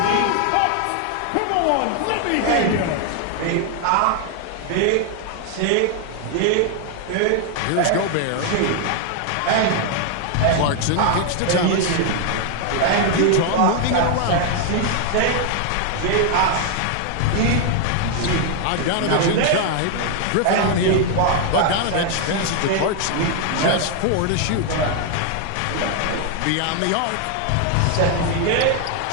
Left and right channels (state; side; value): different; both; correlation 0.00